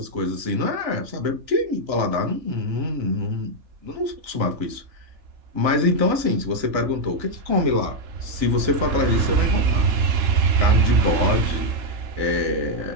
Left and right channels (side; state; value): left; late; 3.4 ms